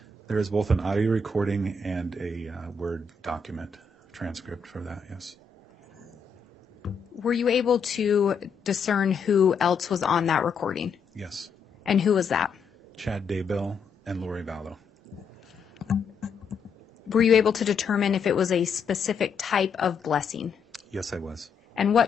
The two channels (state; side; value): quieter; right; 5.1 dB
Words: There is both an audio recording and a Word document transcript for that, yes. Were you able to discern who else was on that recording? Yes. And who was that? Chad Daybell and Lori Vallow. Were you able to determine if it was a specific type of blessing? Yes, I was. And